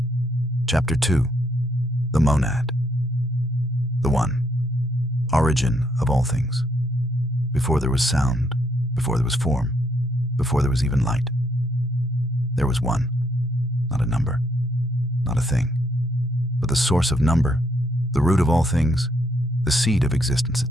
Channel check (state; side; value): normal; both; correlation 0.73